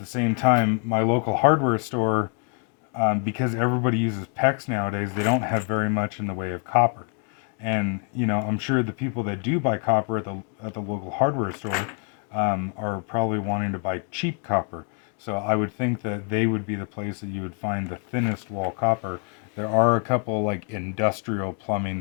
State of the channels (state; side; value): quieter; right; 37.6 dB